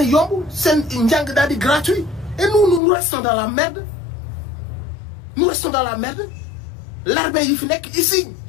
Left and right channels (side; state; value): right; drops out; at 2.8 s